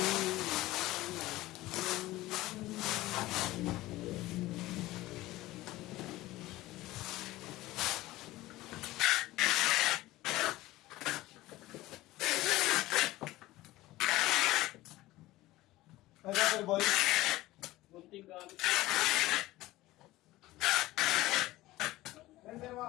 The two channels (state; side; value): quieter; right; 17.6 dB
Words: Ay, Pepper Boy. Bunting gamit. Pepper Boy,